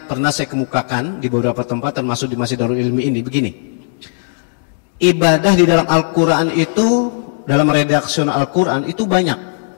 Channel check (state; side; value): silent; right; digital silence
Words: pernah saya kemukakan di beberapa tempat, termasuk di Masjid Darul Ilmi ini, begini. Ibadah di dalam Al-Quran itu, dalam redaksi Al-Quran itu banyak.